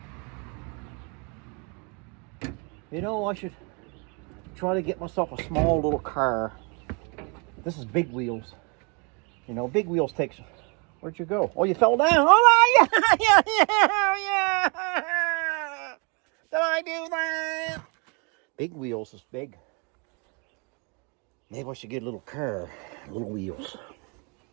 You know, I should try to get myself a small little car. This is big wheels. You know, big wheels takes... Where'd you go? Oh, you fell down. Oh, yeah. Did I do that? Big wheels is big. Maybe I should get a little car, little wheels.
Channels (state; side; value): quieter; left; 33.4 dB